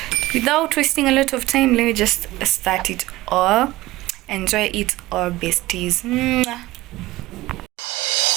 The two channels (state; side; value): quieter; left; 18.1 dB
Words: Without wasting a lot of time, let me just start it all. Enjoy it all, besties. Mwah.